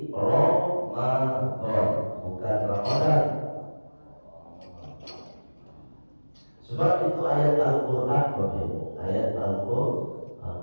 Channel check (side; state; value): both; inverted; correlation -1.00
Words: Ramadan bukan Ramadan. Sebab itu ayat Al-Quran, Bapak Ibu, ayat Al-Quran.